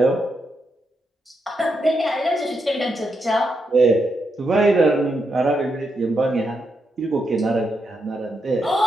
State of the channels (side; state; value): both; normal; correlation 0.82